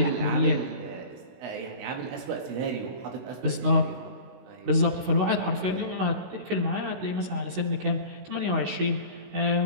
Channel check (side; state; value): left; late; 16 ms